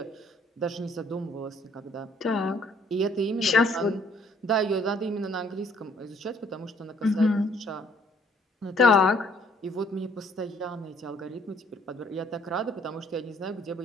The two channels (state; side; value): normal; both; correlation 0.62